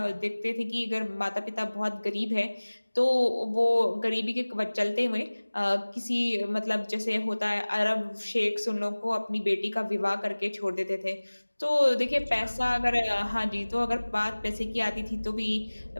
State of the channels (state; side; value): inverted; both; correlation -1.00